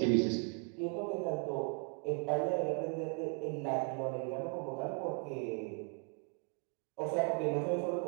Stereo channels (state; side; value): quieter; left; 38.1 dB